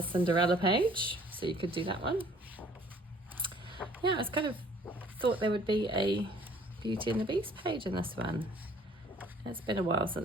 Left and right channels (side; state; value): both; normal; correlation 0.56